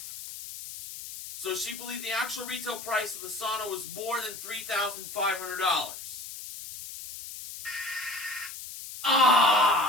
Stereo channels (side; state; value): left; noise; hiss, 11 dB below the sound